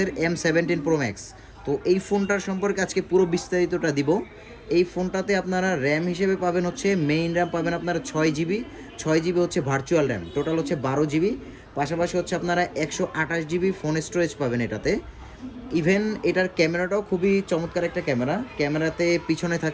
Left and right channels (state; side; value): identical; both; correlation 1.00